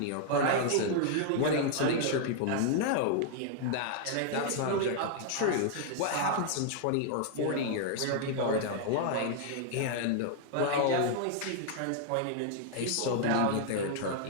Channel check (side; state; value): both; different; correlation 0.00